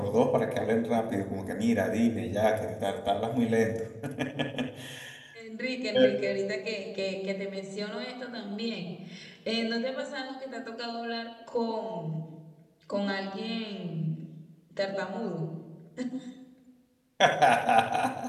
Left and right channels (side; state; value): both; identical; correlation 1.00